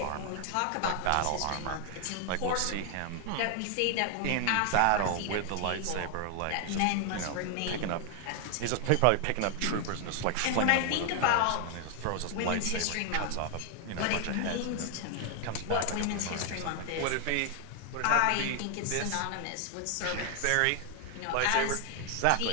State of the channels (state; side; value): different; both; correlation 0.00